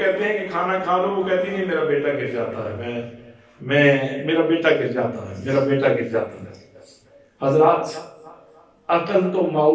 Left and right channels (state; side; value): identical; both; correlation 1.00